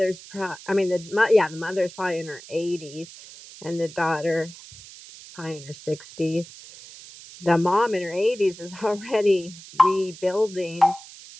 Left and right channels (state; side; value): noise; right; hiss, 18 dB below the sound